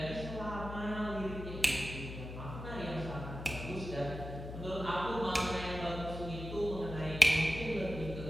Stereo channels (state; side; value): noise; left; hum, 9 dB below the sound